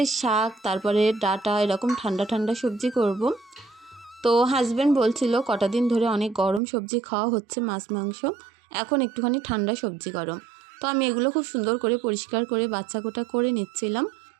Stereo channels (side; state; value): left; drops out; at 6.6 s